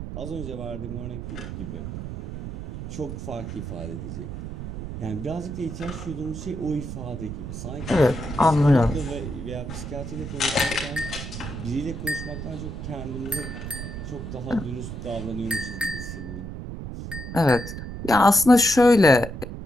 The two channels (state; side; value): noise; right; rumble, 8 dB below the sound